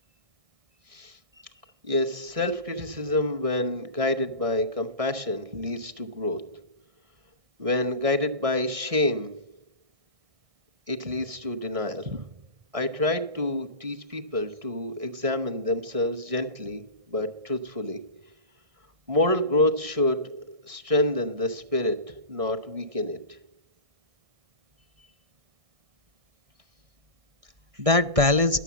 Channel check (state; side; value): late; left; 1.6 ms